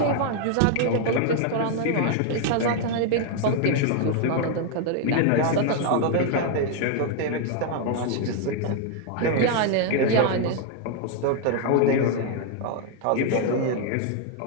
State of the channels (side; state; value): both; different; correlation 0.00